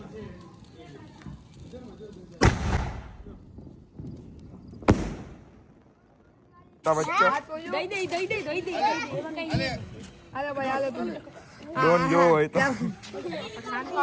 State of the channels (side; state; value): both; identical; correlation 1.00